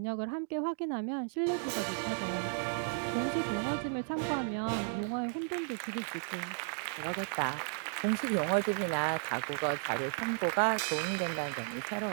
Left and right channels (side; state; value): left; silent; 55 dB below the other